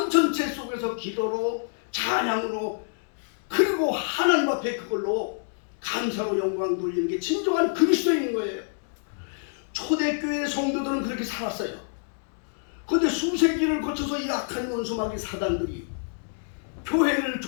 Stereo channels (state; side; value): silent; right; digital silence